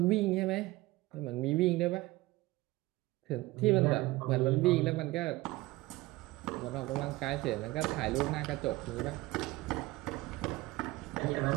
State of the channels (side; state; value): left; quieter; 19.6 dB